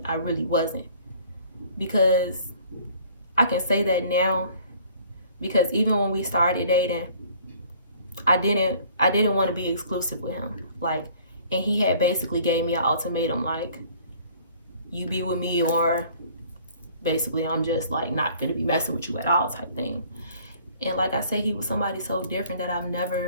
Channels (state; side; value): inverted; both; correlation -0.55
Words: I really wasn't, because I can say that now, because even when we started dating, I didn't want to be exclusive with him. Like, and he had basically gave me an ultimatum, like, you be with me or basically I'm just like not gonna be messing with you at all type thing. And like I say, he was somebody so different that I've